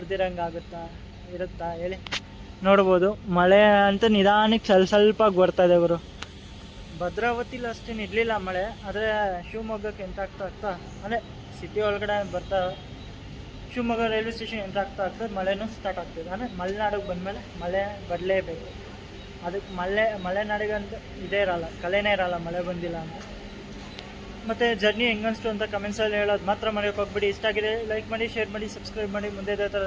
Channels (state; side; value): identical; both; correlation 1.00